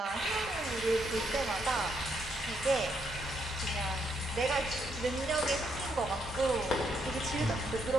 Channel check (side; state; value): both; normal; correlation 0.76